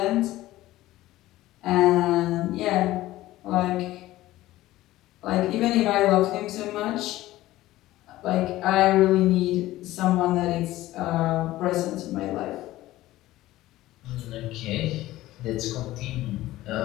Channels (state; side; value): quieter; right; 16.2 dB